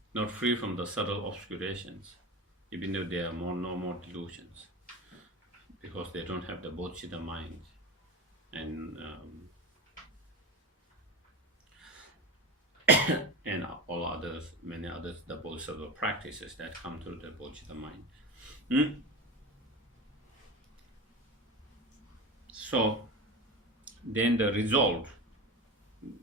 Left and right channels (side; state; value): both; normal; correlation 0.27